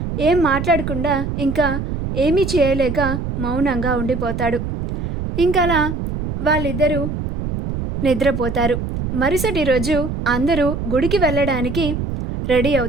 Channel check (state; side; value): noise; right; rumble, 4 dB below the sound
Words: ఏం మాట్లాడకుండా ఇంకా ఏమీ చేయలేక మౌనంగా ఉండిపోతాడు. ఇంకలా వాళ్ళిద్దరూ నిద్రపోతారు. మరుసటి రోజు అందరూ గుడికి వెళ్ళడానికి రెడీ